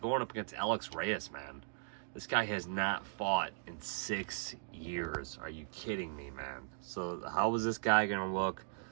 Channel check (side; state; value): left; silent; digital silence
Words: up against Alex Reyes, man. This guy has not fought in 6 years. Are you kidding me, man? So how is this guy going to look?